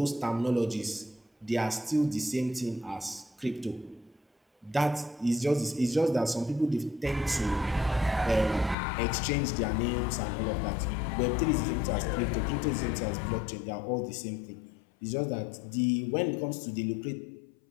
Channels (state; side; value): drops out; right; at 8.8 s